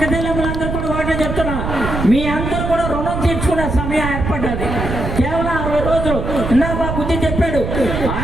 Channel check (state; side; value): noise; right; rumble, 4 dB below the sound